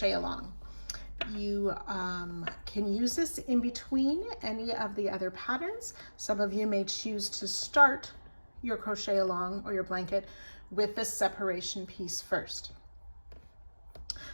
along. You can use this in between any of the other patterns. Some of you may choose to start your crochet along or your blanket with this separation piece first.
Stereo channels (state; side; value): inverted; both; correlation -1.00